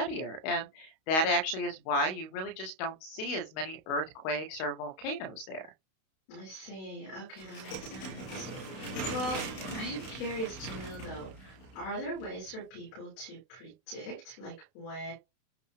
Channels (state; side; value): late; right; 32 ms